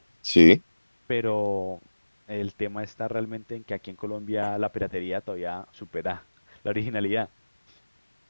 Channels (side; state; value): both; inverted; correlation -1.00